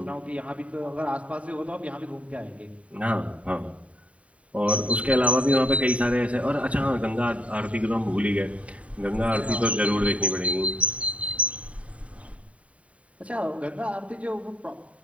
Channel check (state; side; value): late; left; 0.066 ms